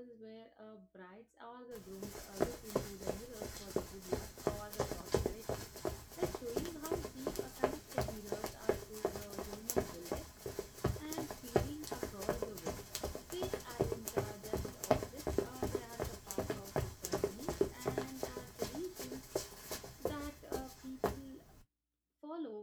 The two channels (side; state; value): both; identical; correlation 1.00